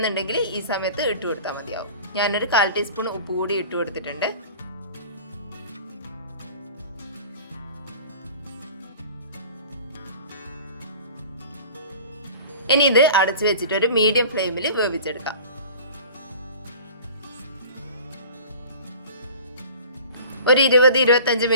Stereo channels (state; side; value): inverted; both; correlation -0.43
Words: ഈ സമയത്ത് ഇട്ട് കൊടുത്താൽ മതിയാവും. ഞാനൊരു 1/4 ടീസ്പൂൺ ഉപ്പ് കൂടി ഇട്ട് കൊടുത്തിട്ടുണ്ട്. ഇനി ഇത് അടച്ചു വെച്ചിട്ട് ഒരു മീഡിയം ഫ്ലെയിമിൽ വേവിച്ചെടുക്കാം. ഒരു 20-25